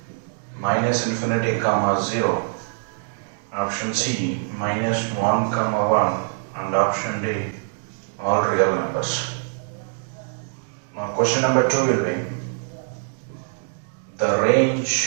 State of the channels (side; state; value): left; silent; 62 dB below the other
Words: minus infinity comma 0, option C minus 1 comma 1, and option D all real numbers. Now question number 2 will be the